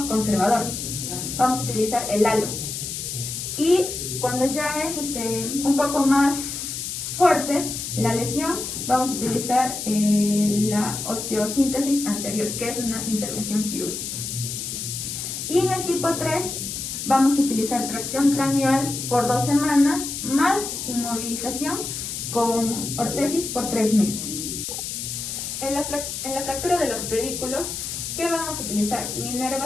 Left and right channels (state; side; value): noise; left; hiss, 5 dB below the sound